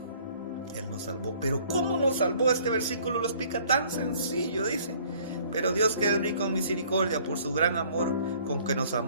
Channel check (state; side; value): inverted; both; correlation -0.57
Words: Él nos salvó. Pero ¿cómo nos salvó? Este versículo lo explica tan sencillo, dice. Pero Dios, que es rico en misericordia por su gran amor con que nos